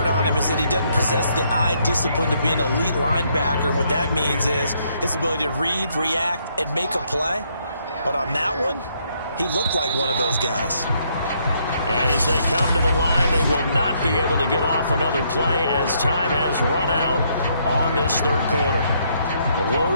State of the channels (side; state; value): both; inverted; correlation -0.72